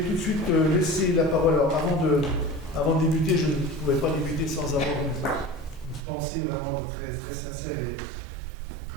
de suite laisser la parole. Alors, avant de débuter, je ne pouvais pas débuter sans avoir une pensée vraiment très, très sincère et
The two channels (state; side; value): drops out; left; at 6.0 s